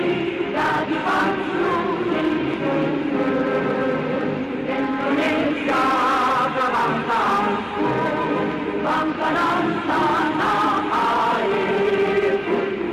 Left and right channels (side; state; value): both; identical; correlation 1.00